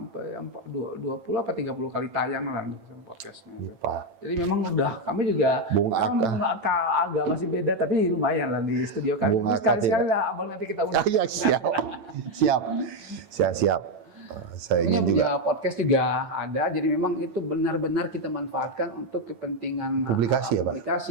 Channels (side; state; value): left; late; 8.9 ms